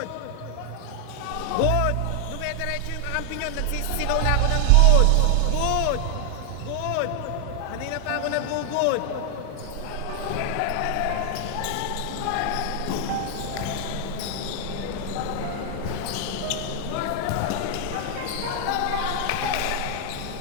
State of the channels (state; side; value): different; both; correlation 0.00